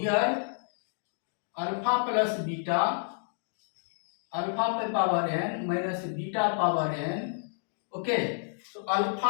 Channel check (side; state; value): right; silent; digital silence